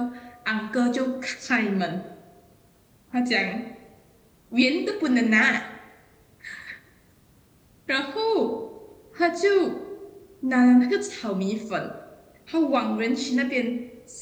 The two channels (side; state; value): both; identical; correlation 1.00